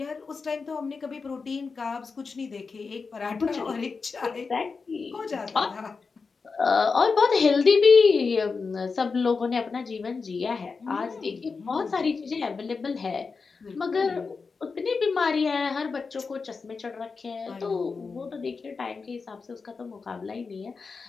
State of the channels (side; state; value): right; quieter; 4.7 dB